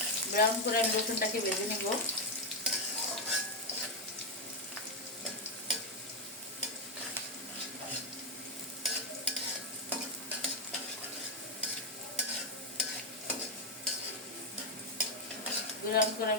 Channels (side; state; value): both; normal; correlation 0.05